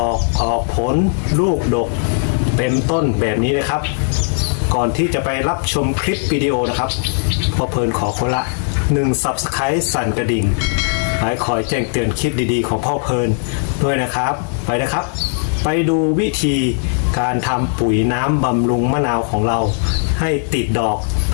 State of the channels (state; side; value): silent; right; 62 dB below the other